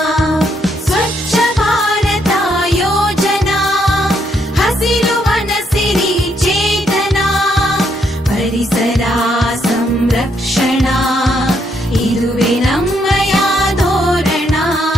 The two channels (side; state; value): both; normal; correlation 0.74